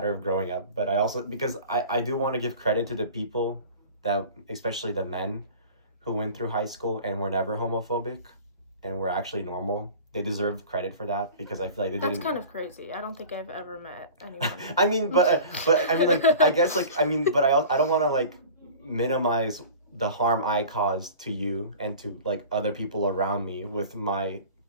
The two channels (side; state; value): both; inverted; correlation -0.40